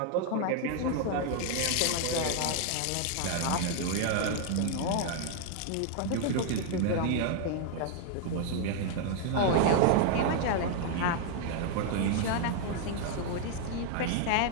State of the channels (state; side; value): different; both; correlation 0.00